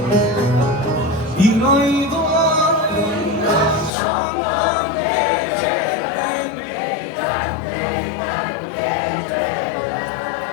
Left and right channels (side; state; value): right; drops out; at 3.9 s